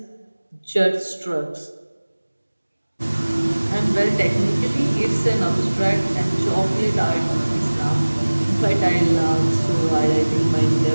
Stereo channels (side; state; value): both; inverted; correlation -1.00